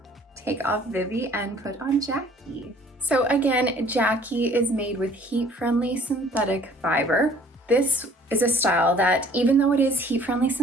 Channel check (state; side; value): normal; both; correlation 0.54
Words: Take off Vivie and put on Jacky. So again, Jacky is made with heat-friendly synthetic fiber. This is a style that, even though it is heat-friendly